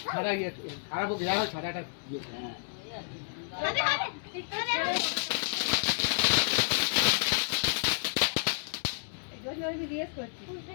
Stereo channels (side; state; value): right; silent; 57 dB below the other